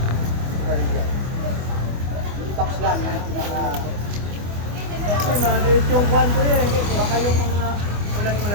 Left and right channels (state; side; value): late; left; 24 ms